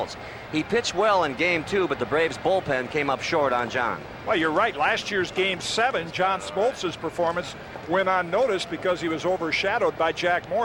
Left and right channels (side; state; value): both; identical; correlation 1.00